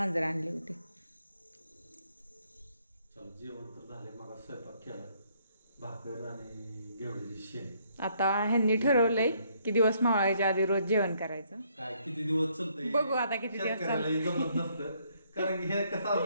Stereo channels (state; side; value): inverted; both; correlation -0.69